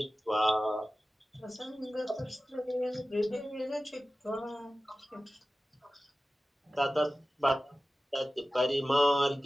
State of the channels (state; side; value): normal; both; correlation 0.96